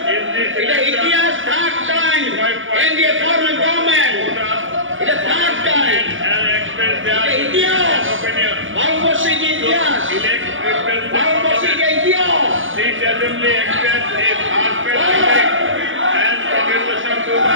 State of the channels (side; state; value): left; late; 0.57 ms